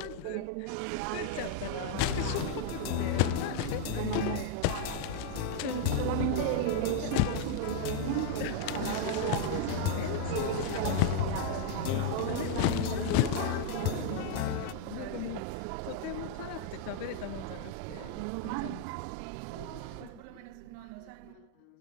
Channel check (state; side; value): different; both; correlation 0.00